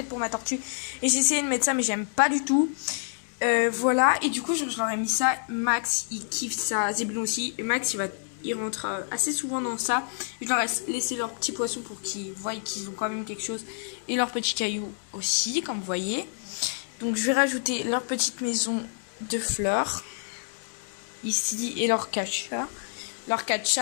pour ma tortue. Et j'ai essayé de mettre ça mais j'aime pas du tout. Voilà, et du coup je leur ai mis ça. Max il kiffe ça, Zébulon aussi, et Max il rentre assez souvent dans ça. Je leur ai laissé leurs petits poissons pour qu'ils voient qu'ils ont quand même quelque chose, et leurs petits cailloux aussi, comme vous voyez. Donc je vais rajouter leur petite maison de fleurs ici et leur catcha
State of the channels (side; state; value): right; silent; digital silence